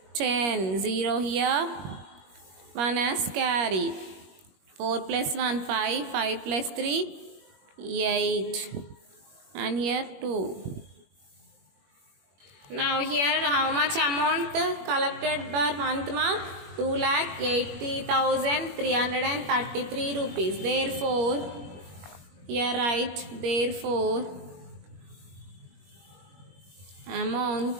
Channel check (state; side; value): late; left; 21 ms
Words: 10, 0 here, 1 as carry. 4 plus 1, 5, 5 plus 3, 8, and here 2. Now here how much amount collected per month, 2,80,333 rupees. Therefore here write, therefore